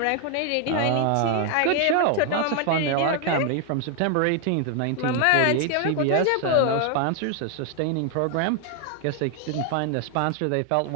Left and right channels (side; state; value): both; different; correlation 0.00